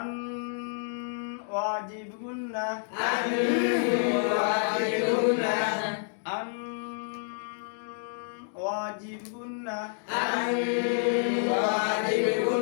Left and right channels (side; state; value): right; silent; digital silence